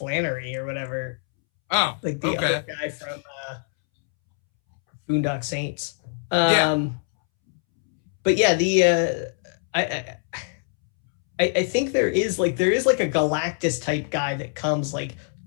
or whatever. Oh, like the other guy from Boondock Saints. But yeah, I think there is like a Galactus type guy that comes like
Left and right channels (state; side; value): silent; right; 63 dB below the other